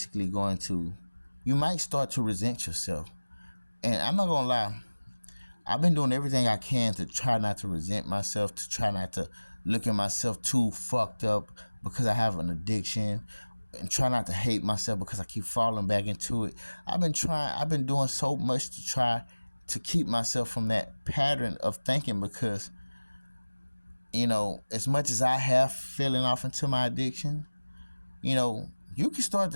you might start to resent yourself. And I'm not gonna lie, I've been doing everything I can to try not to resent myself, to try not to look at myself too fucked up because I have an addiction, and try not to hate myself because I keep falling back into it. I've been doing so much to try to keep myself from that pattern of thinking because, as much as I have fallen off into my addiction, you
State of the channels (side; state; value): both; inverted; correlation -1.00